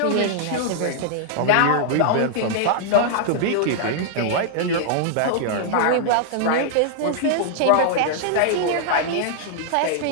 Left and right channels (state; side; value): different; both; correlation -0.01